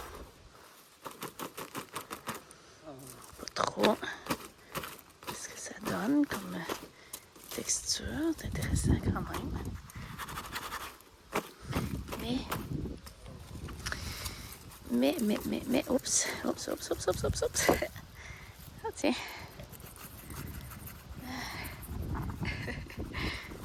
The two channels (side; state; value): both; identical; correlation 1.00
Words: Pas trop. Qu'est-ce que ça donne comme texture? C'est intéressant quand même. Mais, oups. Ah, tiens.